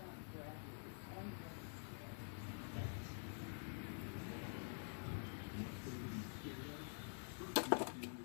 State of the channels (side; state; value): right; silent; digital silence